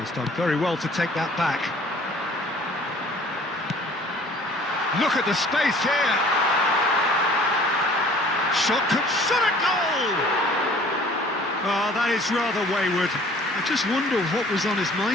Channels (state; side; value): normal; both; correlation 0.52